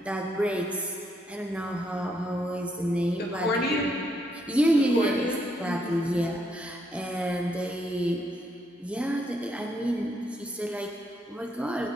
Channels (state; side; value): normal; both; correlation 0.75